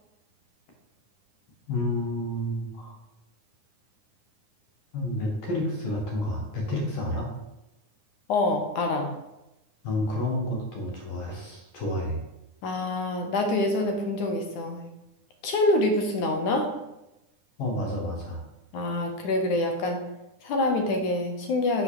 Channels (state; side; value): late; right; 9.7 ms